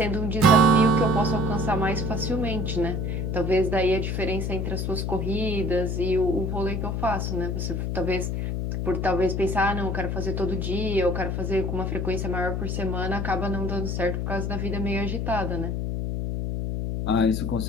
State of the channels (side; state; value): left; noise; hum, 1 dB below the sound